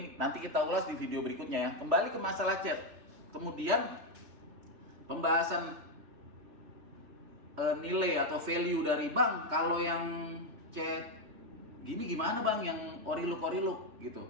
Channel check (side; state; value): left; late; 3.4 ms